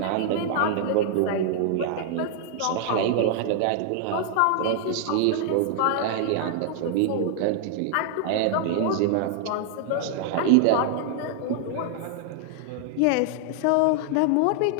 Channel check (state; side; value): different; both; correlation 0.00